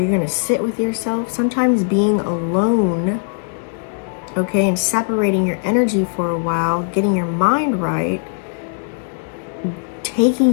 going to sit with yourself. Sometimes being alone, okay, and separating your energy for a while, getting your mind right, taking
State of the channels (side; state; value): right; silent; 67 dB below the other